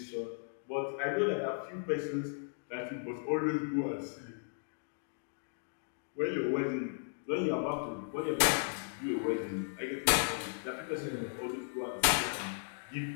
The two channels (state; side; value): silent; right; digital silence